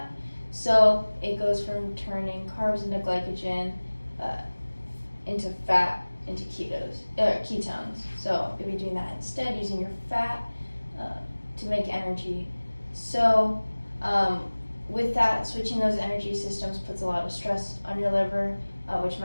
So it goes from turning carbs into glycogen, into fat, into ketones. So you'll be doing that instead, using your fat to make energy. So with that, switching those energy systems puts a lot of stress on your liver, which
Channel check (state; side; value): inverted; both; correlation -1.00